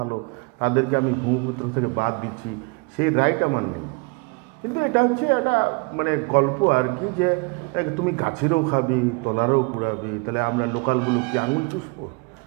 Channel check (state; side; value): quieter; left; 30.2 dB